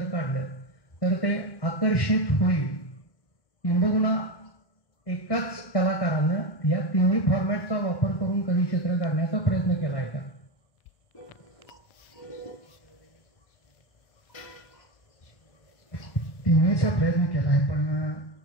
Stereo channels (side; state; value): right; late; 1.1 ms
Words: काढलं तर ते आकर्षित होईल. किंबहुना एकाच कलाकारानं या तिन्ही फॉर्मॅटचा वापर करून कधी चित्र काढण्याचा प्रयत्न केला आहे का? तिन्हीचा प्रयत्न केला आहे, पण